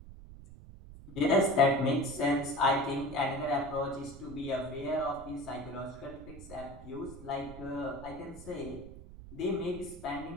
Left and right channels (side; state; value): right; noise; rumble, 15 dB below the sound